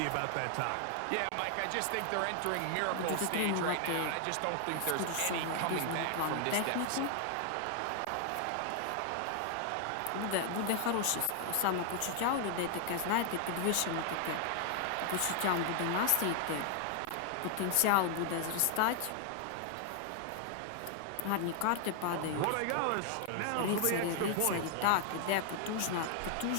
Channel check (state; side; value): different; both; correlation 0.00